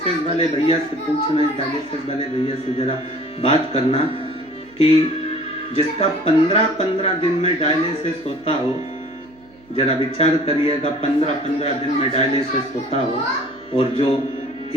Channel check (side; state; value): right; noise; hum, 28 dB below the sound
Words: वाले भैया से पूछना, इस डायलिसिस वाले भैया से जरा बात करना कि जिसका 15-15 दिन में डायलिसिस होता हो, जरा विचार करिएगा, 15-15 दिन में डायलिसिस होता हो और जो